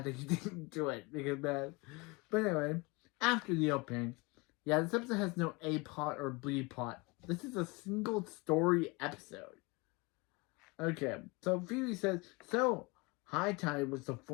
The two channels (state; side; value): quieter; right; 26.4 dB